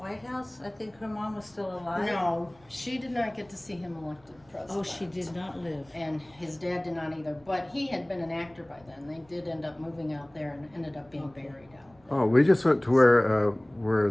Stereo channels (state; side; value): noise; right; rumble, 29 dB below the sound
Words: House? I think her mom was still alive. No, she did not get to see him elected president. Oh, she did not live. And his dad did not either. But he had been an actor by then. They did end up moving out there and ended up being buried out there. Oh, we just went to where